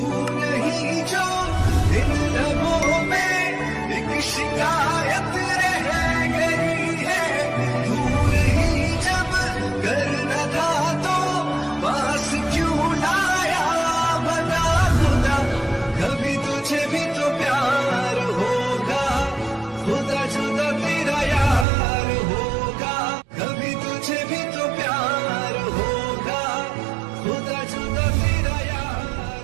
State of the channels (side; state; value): left; drops out; at 21.7 s